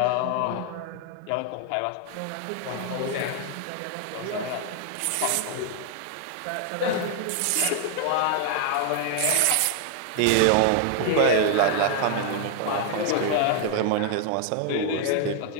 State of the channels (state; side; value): different; both; correlation 0.00